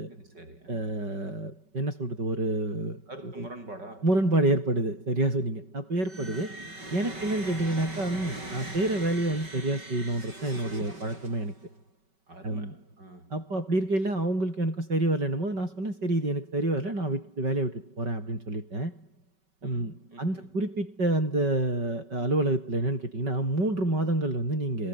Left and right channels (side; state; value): left; late; 5.3 ms